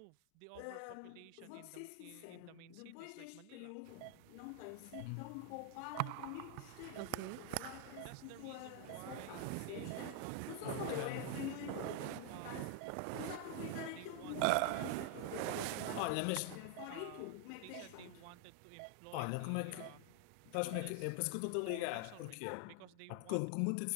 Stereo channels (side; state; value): both; different; correlation 0.00